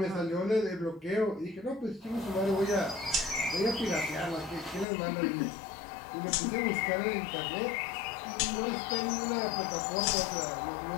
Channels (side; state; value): right; drops out; at 4.9 s